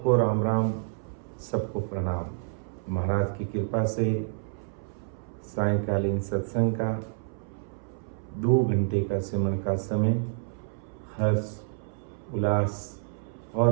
राम राम, सबको प्रणाम। महाराज की कृपा से सायंकालीन सत्संग का 2 घंटे का सिमरन का समय हर्ष, उल्लास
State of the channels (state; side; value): silent; left; 59 dB below the other